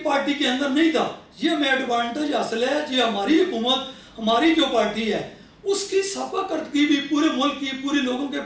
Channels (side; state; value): both; identical; correlation 1.00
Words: पार्टी के अंदर नहीं था। ये हमें एडवांटेज हासिल है, ये हमारी हुकूमत, हमारी जो पार्टी है उसकी साफाकर्दगी भी पूरे मुल्क की, पूरे लोगों के,